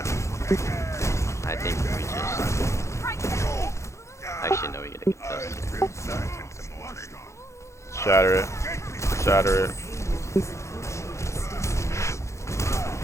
I think we just. Actually, no, we get a contest. Shatter it. Shatter it.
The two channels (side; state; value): right; late; 0.14 ms